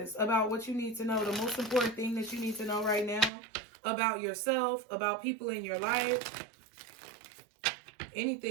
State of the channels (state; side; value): drops out; left; at 3.3 s